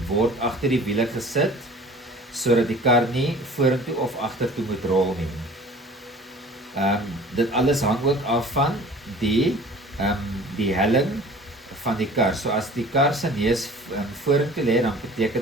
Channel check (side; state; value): both; normal; correlation 0.45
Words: word agter die wiele gesit sodat die kar nie vorentoe of agtertoe moet rol nie. Dit alles hang ook af van die helling van die kar. So as die kar se neus vorentoe lê, dan beteken